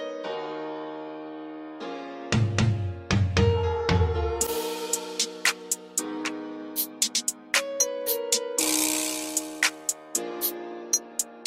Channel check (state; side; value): identical; both; correlation 1.00